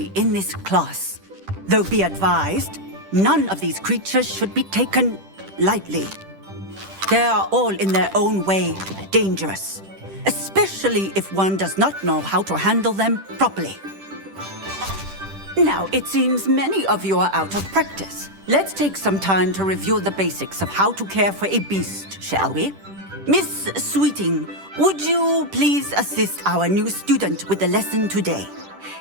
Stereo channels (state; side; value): late; left; 10 ms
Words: in this class. Though be advised, none of these creatures should be taken lightly. They are all in their own way dangerous, especially if one does not know how to handle them properly. Now, it seems many of you are out of practice. Let's take some time to review the basics of how to care for a beast, shall we? Miss Sweeting, would you please assist our new student with the lesson today?